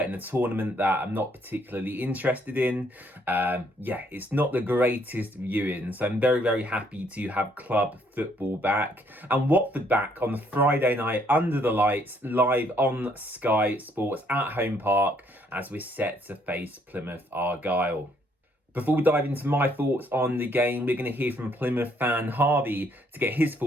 a tournament that I'm not particularly interested in, it's not the greatest viewing. So I'm very, very happy to have club football back and Watford back on the Friday night under the lights, live on Sky Sports at Home Park as we're set to face Plymouth Argyle. Before we dive into my thoughts on the game, we're going to hear from Plymouth fan Harvey to get his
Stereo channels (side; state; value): both; normal; correlation 0.67